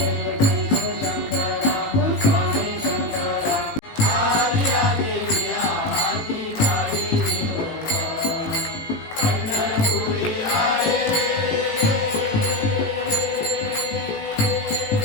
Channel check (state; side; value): late; right; 18 ms